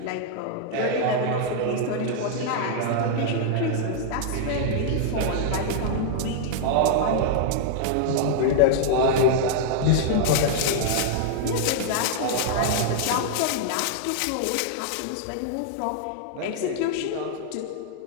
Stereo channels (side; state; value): both; different; correlation -0.01